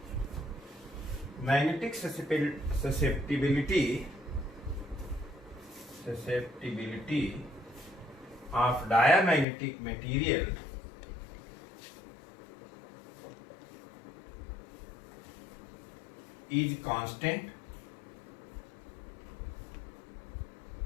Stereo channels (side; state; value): right; drops out; at 9.5 s